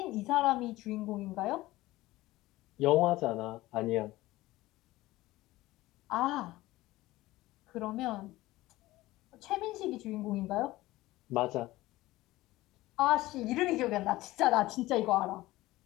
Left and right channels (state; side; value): quieter; right; 17.9 dB